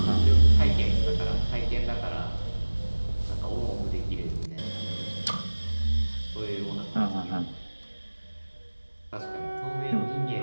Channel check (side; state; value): both; inverted; correlation -1.00